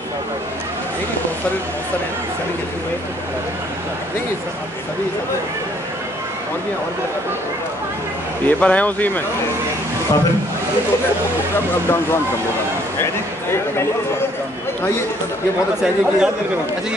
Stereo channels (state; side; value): normal; both; correlation 0.63